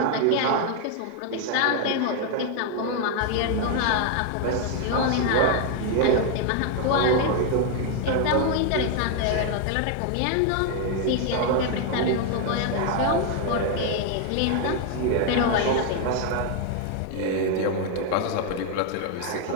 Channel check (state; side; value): different; both; correlation 0.01